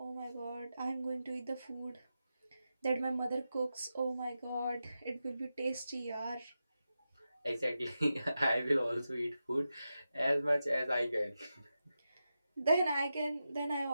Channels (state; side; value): inverted; both; correlation -0.90